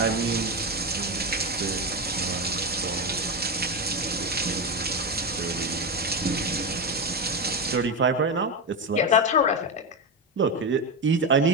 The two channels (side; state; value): both; normal; correlation 0.13